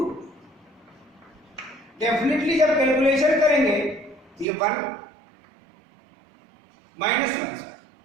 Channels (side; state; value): left; drops out; at 4.5 s